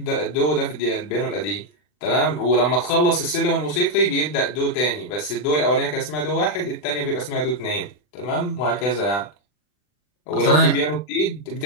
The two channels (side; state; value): right; late; 40 ms